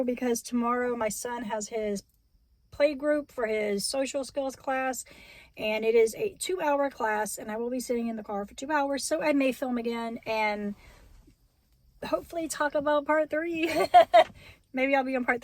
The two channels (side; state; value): both; identical; correlation 1.00